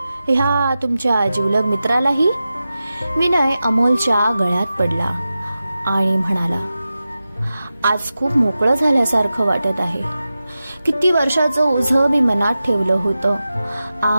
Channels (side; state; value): both; inverted; correlation -0.93